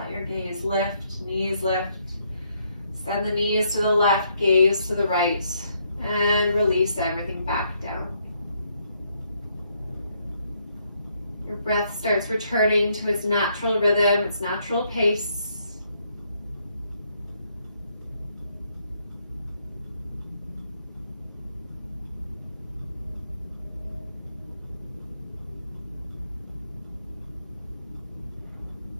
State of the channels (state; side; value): inverted; both; correlation -0.73